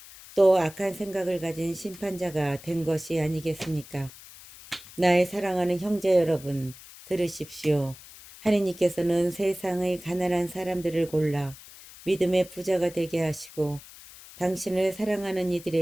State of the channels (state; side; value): noise; left; hiss, 18 dB below the sound